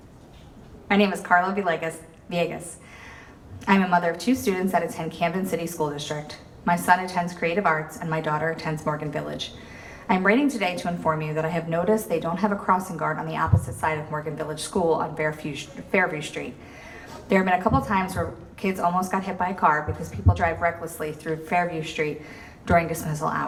Villegas. I'm a mother of 2 students that attend Camden City School District. My son attends Creative Arts and my daughter attends Morgan Village. I'm writing today to inform you that I have noticed they don't have a crossing guard on the opposite side of Morgan Village School on Fairview Street. There have been a couple times where kids almost got hit by a car because people drive recklessly through Fairview Street during dismissal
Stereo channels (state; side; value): identical; both; correlation 1.00